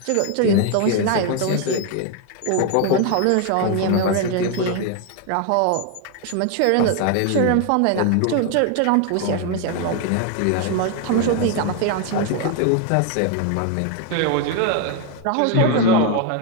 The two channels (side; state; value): both; different; correlation 0.01